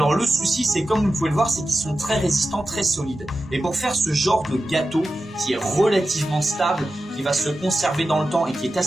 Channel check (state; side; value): normal; both; correlation 0.93